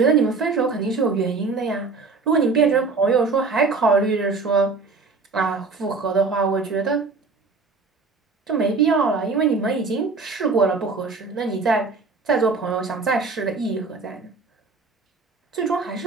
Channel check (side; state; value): left; quieter; 4.2 dB